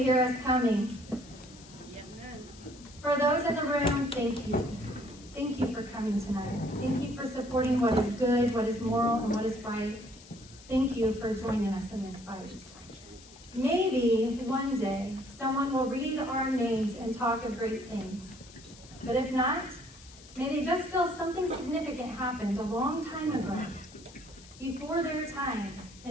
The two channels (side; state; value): left; noise; hiss, 21 dB below the sound